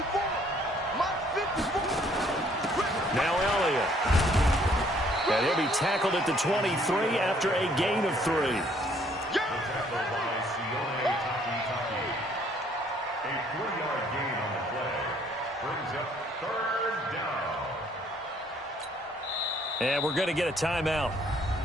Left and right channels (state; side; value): normal; both; correlation 0.63